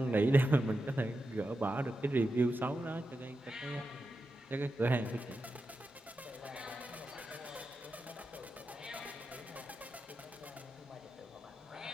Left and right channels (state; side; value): normal; both; correlation 0.89